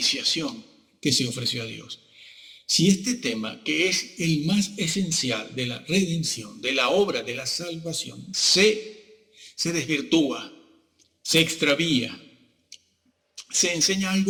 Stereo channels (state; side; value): identical; both; correlation 1.00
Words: que se ofreció a Dios. Si este tema, que es el más esencial de la redención, de la obra de la salvación, se desvirtúa, se extravía, se enseña